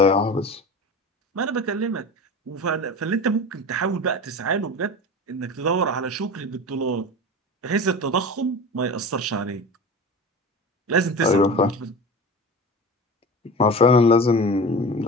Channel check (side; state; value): both; normal; correlation 0.32